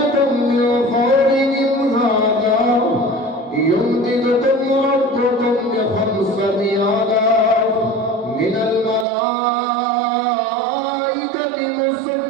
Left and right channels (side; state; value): left; drops out; at 9.1 s